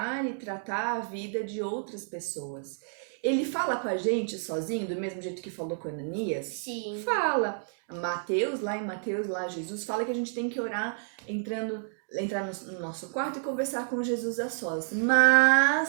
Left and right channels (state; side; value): silent; left; digital silence